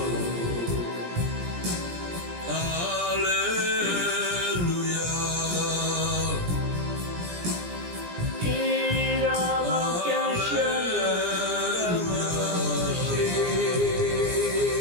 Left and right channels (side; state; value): left; late; 17 ms